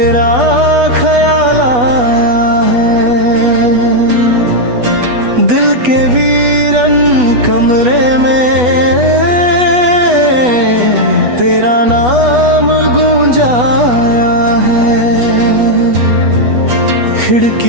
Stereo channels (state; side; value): late; left; 8.2 ms